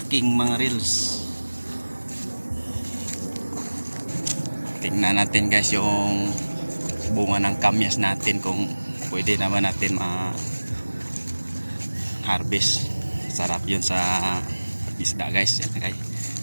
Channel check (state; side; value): inverted; both; correlation -1.00